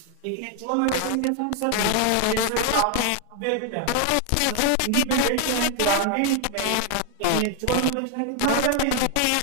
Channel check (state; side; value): different; both; correlation 0.00